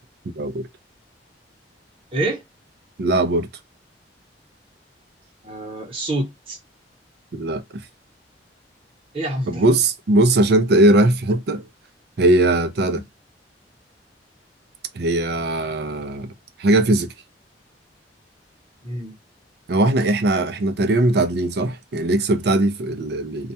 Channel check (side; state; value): both; normal; correlation 0.38